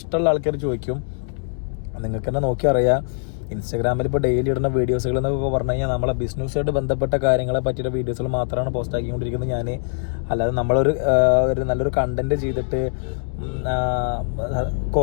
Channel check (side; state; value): right; silent; digital silence